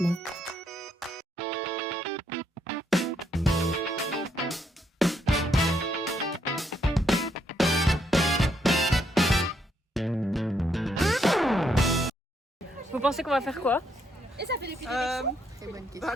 Vous pensez qu'on va faire quoi?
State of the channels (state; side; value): normal; both; correlation 0.74